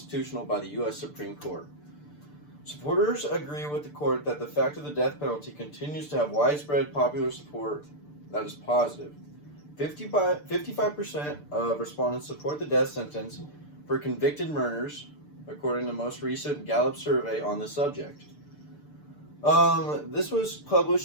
by the U.S. Supreme Court. Supporters agree with the court that the fact of the death penalty continues to have widespread popular support that is positive. 55% of respondents support the death sentence for convicted murderers, according to the most recent Gallup survey on the subject. This was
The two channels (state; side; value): late; right; 6.8 ms